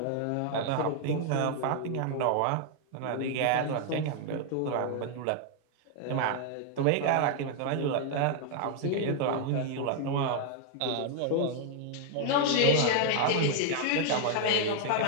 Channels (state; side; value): different; both; correlation 0.00